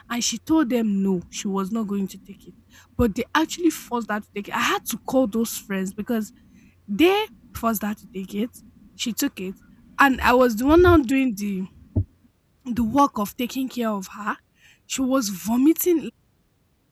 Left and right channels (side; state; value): both; identical; correlation 1.00